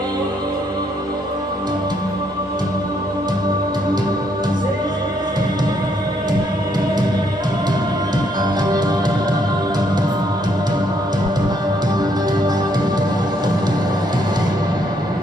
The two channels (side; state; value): both; normal; correlation 0.72